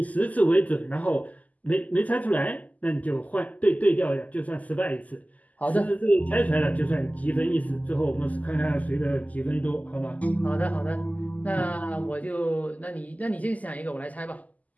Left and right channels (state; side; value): late; right; 0.077 ms